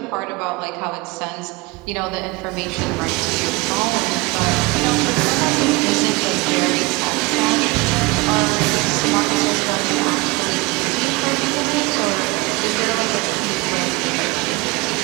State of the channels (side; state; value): left; quieter; 23.8 dB